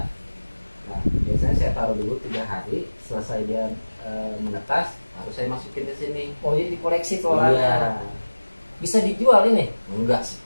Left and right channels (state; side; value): inverted; both; correlation -1.00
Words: Nah, biasanya saya taruh dulu 3 hari, selesai dia menetas, baru saya masukin ke sini. Oh, jadi dikoleksi telurannya. Iya. Bisa dijual ini? Enggak sih.